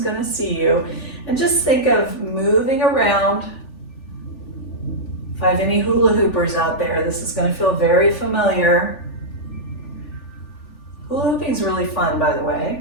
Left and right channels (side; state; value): right; late; 3.4 ms